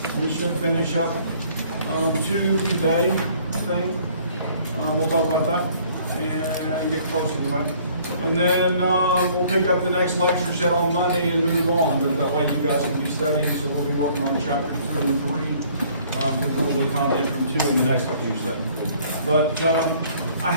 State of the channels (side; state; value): both; inverted; correlation -0.58